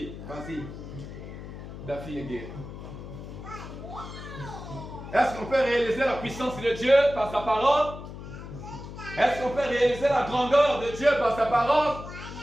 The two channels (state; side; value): noise; left; hum, 11 dB below the sound